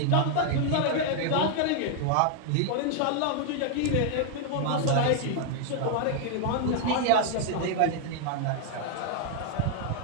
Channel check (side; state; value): both; different; correlation 0.00